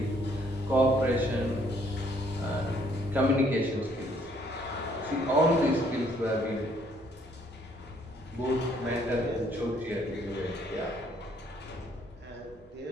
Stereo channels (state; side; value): normal; both; correlation 0.65